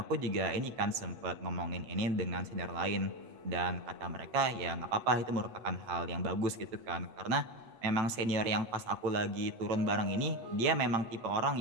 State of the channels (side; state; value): left; late; 8.3 ms